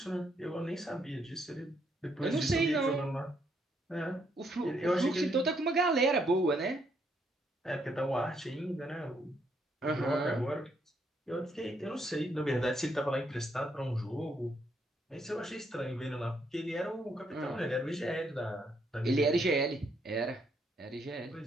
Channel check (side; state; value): both; normal; correlation 0.73